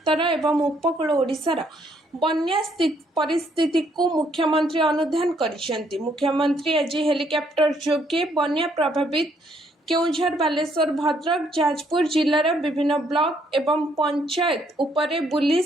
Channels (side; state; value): both; normal; correlation 0.69